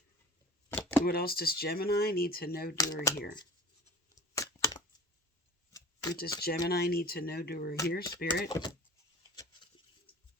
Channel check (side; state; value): both; normal; correlation 0.42